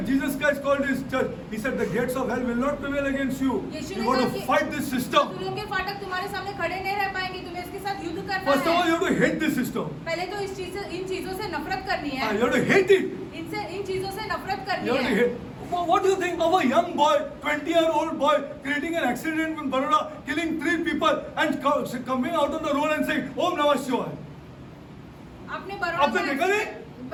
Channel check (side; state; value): both; identical; correlation 1.00